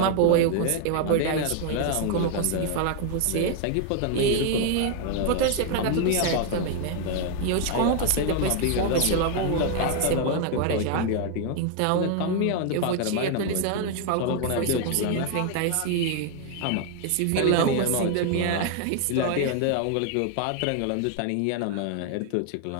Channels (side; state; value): both; different; correlation 0.00